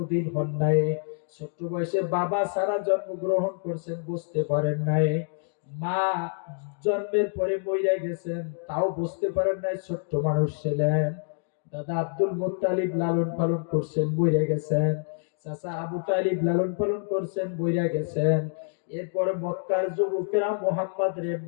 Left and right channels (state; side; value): silent; right; digital silence